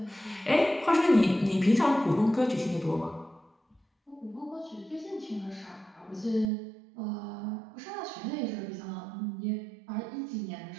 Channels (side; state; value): left; drops out; at 6.5 s